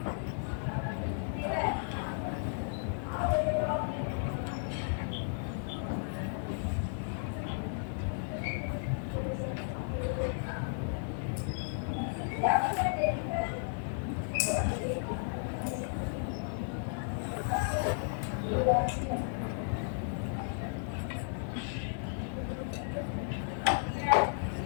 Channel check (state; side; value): silent; right; digital silence